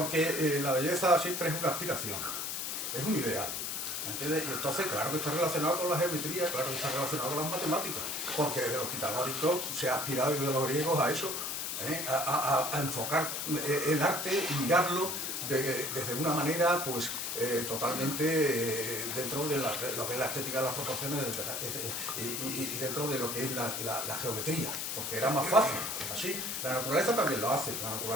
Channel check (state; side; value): noise; left; hiss, 3 dB below the sound